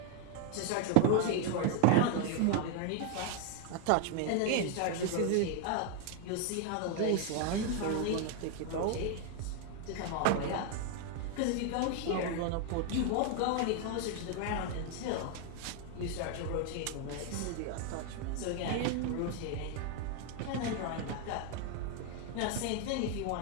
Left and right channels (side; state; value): both; different; correlation 0.00